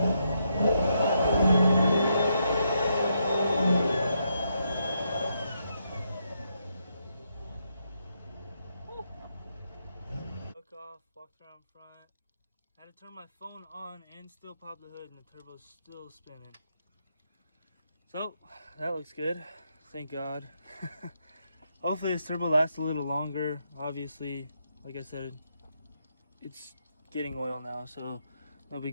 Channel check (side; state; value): both; inverted; correlation -0.79